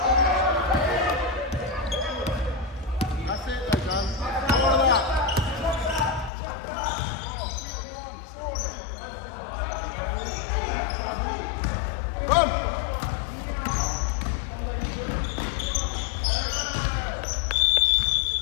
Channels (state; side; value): drops out; right; at 6.3 s